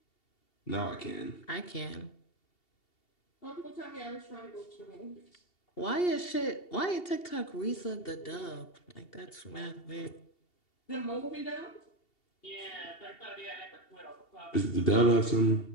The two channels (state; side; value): late; right; 2.7 ms